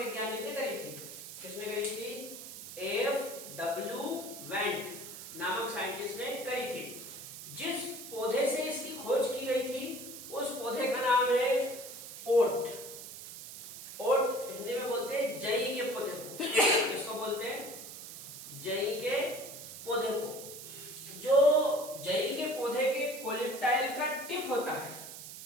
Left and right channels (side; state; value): right; noise; hiss, 11 dB below the sound